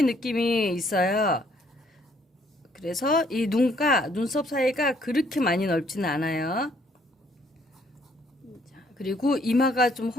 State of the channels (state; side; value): normal; both; correlation 0.66